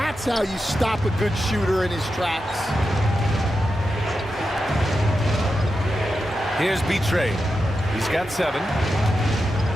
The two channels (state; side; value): normal; both; correlation 0.89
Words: how you stop a good shooter in his tracks. Here's Betray. He's got 7.